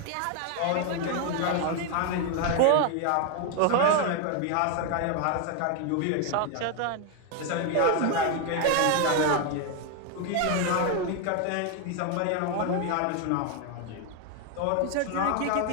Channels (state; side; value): different; both; correlation 0.01